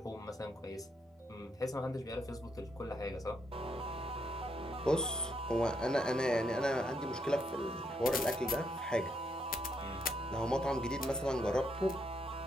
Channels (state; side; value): normal; both; correlation 0.77